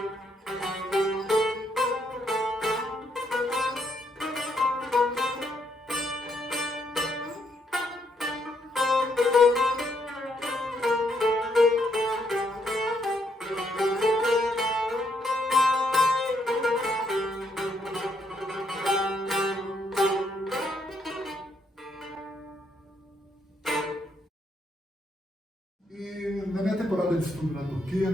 E na minha temporada de estudo na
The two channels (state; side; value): normal; both; correlation 0.75